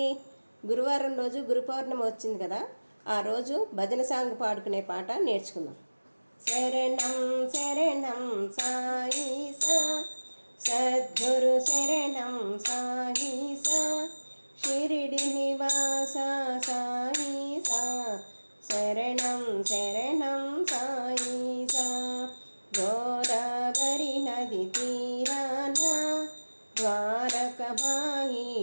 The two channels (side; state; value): both; inverted; correlation -1.00